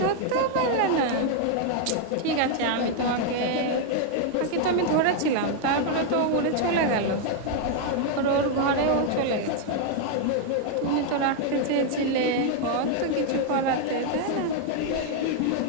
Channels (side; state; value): both; different; correlation 0.00